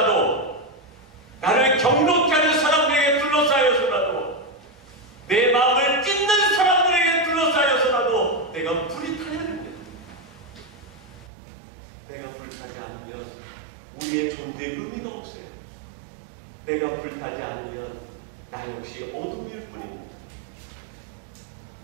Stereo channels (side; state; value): left; drops out; at 11.3 s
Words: 나를 경록케 하는 사람들에게 둘러싸여서라도, 내 마음을 찢는 사람들에게 둘러싸여서라도 내가 불이 타야 됩니다. 내가 불타지 않으면 우리의 존재의 의미가 없어요. 내가 불타지 않으면 나 역시 어둠일 뿐입니다.